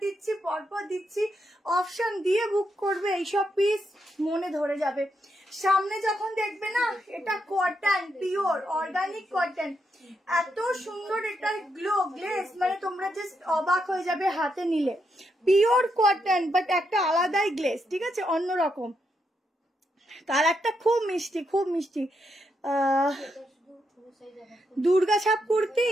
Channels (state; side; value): normal; both; correlation 0.81